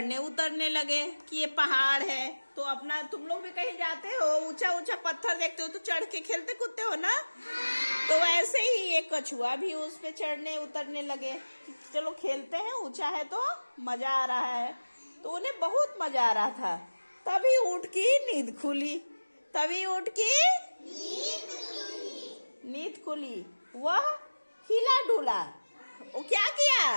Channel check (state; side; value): inverted; both; correlation -1.00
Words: उतरने लगे कि ये पहाड़ है। तो अपना तुम लोग भी कहीं जाते हो, ऊंचा ऊंचा पत्थर देखते हो तो चढ़ के खेलते कूदते हो ना। तो वैसे ही ये कछुआ भी उस पे चढ़ने उतरने लगे कि चलो खेलते हैं, ऊंचा है तो मजा आ रहा है। तो उन्हें बहुत मजा आ रहा था। तभी ऊँट की नींद खुली, तभी ऊँट की नींद खुली। वह हिला डुला। वो क्या